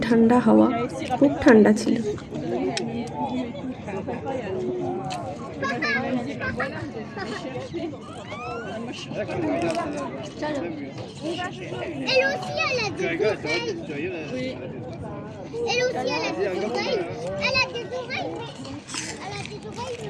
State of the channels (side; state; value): both; identical; correlation 1.00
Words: ঠান্ডা হাওয়া, খুব ঠান্ডা ছিল।